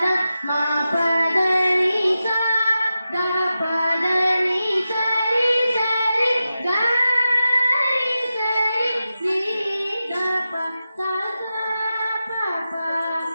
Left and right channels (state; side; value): inverted; both; correlation -0.92